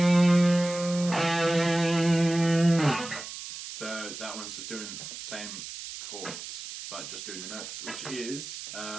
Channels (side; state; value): right; noise; hiss, 10 dB below the sound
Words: So that one's just doing the same chords, but just doing the notes, which is